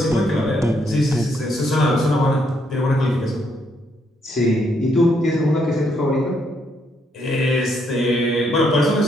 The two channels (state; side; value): normal; both; correlation 0.74